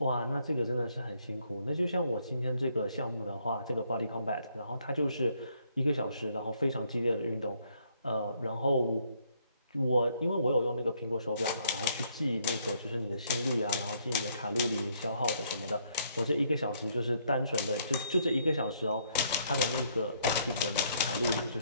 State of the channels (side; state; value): both; inverted; correlation -0.69